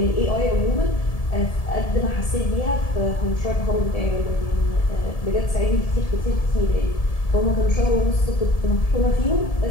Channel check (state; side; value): late; right; 1.7 ms